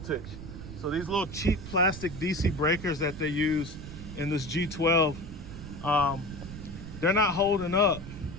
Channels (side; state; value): right; noise; rumble, 11 dB below the sound